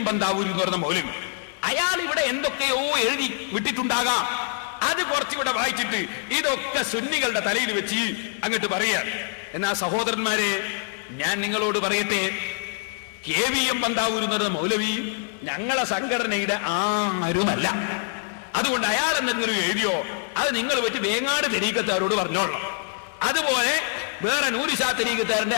ബന്താവൂർ എന്ന് പറയുന്ന മൗലവി. അയാൾ ഇവിടെ എന്തൊക്കെയോ എഴുതി വിട്ടിട്ടുണ്ടാകാം, അത് കുറച്ചിവിടെ വായിച്ചിട്ട് ഇതൊക്കെ സുന്നികളുടെ തലയിൽ വെച്ച് അങ്ങോട്ട് പറയാൻ. എന്നാ സഹോദരന്മാരെ, ഞാൻ നിങ്ങളോട് പറയട്ടെ, KVM ബന്താവൂർ എന്ന് പറയുന്ന മൗലവി ഞങ്ങളെ സംഘടനയുടെ ആരുമല്ല. അതുകൊണ്ട് അയാൾ എന്തെങ്കിലും എഴുതിയോ അത് നിങ്ങൾ വെച്ച് വേങ്ങാട് തരീക്കത്താരോട് പറഞ്ഞോളണം. അതുപോലെ വേറെ നൂരിശാ തരീക്കത്താരന്റെ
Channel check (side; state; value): right; silent; digital silence